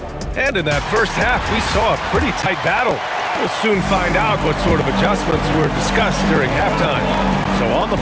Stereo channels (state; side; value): identical; both; correlation 1.00